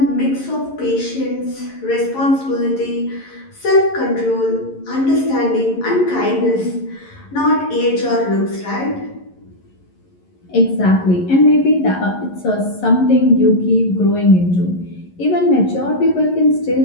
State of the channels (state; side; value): late; right; 11 ms